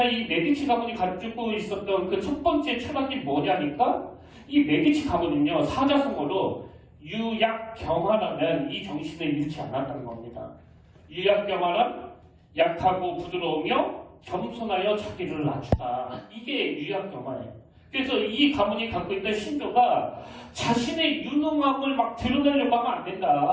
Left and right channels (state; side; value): identical; both; correlation 1.00